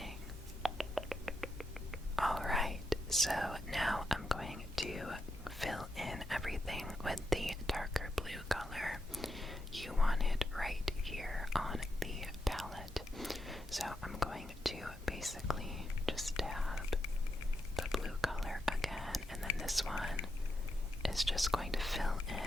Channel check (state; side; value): normal; both; correlation 0.84